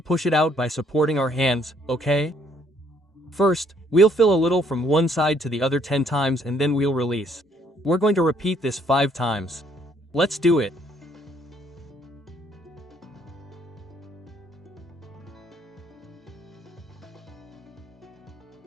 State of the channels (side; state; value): both; normal; correlation 0.65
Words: it out by supporting our hands, okay? First, we'll fill a little from one side to the other 10 times and then we'll release. We're going to repeat this 5 times. Let's do it.